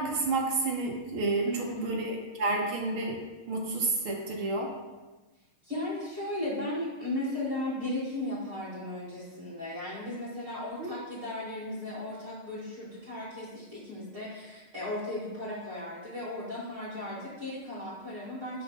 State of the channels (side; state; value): left; late; 6.5 ms